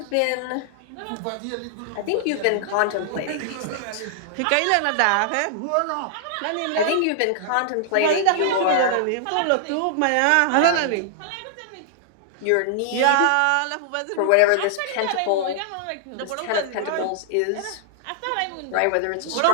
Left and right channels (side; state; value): both; different; correlation -0.01